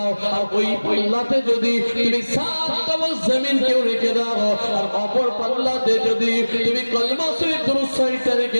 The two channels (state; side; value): inverted; both; correlation -1.00